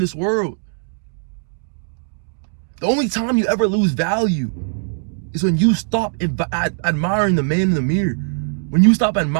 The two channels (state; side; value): silent; left; digital silence